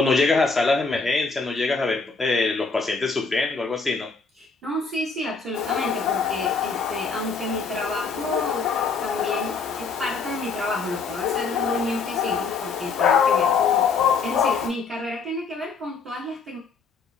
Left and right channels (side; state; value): right; quieter; 4.7 dB